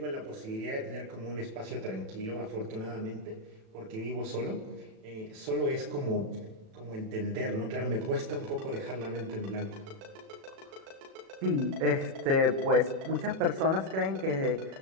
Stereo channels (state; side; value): late; left; 37 ms